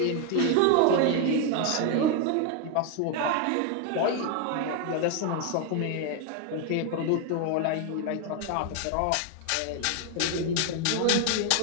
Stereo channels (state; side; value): different; both; correlation 0.01